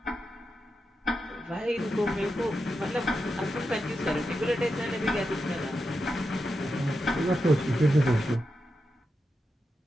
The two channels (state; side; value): normal; both; correlation 0.88